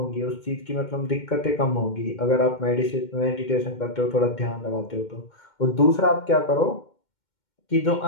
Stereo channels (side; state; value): right; late; 2.1 ms